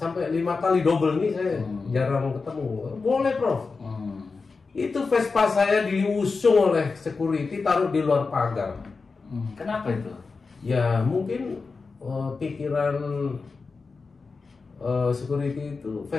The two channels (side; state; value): right; quieter; 4.4 dB